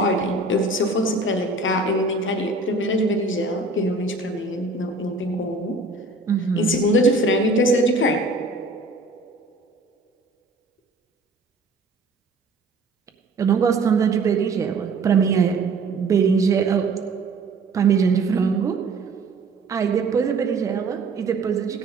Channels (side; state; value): left; quieter; 3.2 dB